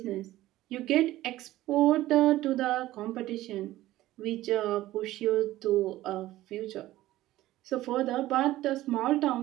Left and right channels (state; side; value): quieter; left; 15.8 dB